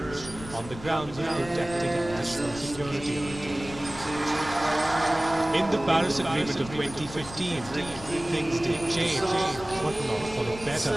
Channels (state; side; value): noise; left; rumble, 15 dB below the sound